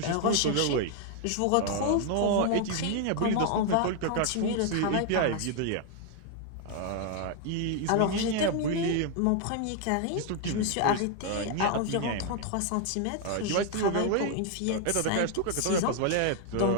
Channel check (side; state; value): both; different; correlation 0.00